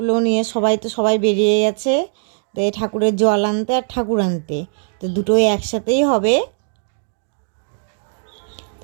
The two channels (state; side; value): silent; left; digital silence